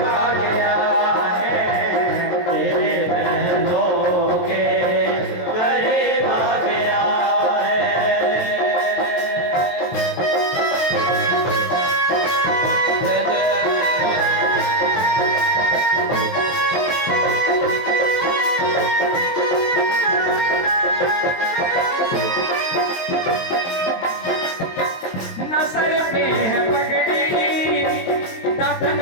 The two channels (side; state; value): right; late; 23 ms